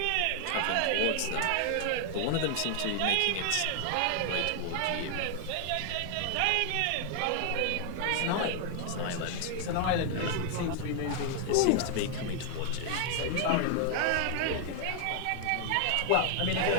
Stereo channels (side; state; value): both; different; correlation 0.00